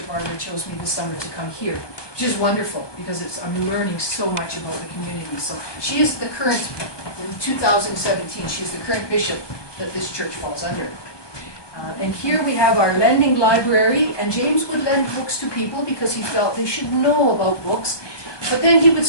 Barbara chose me this summer to come here, which is wonderful because I'm learning so much about the community. So she is the current, in 2017, she is the current bishop that this church falls under. And here we have our lending library, and James would lend books to people because he felt they should know about books. But then he would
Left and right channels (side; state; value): right; late; 1.2 ms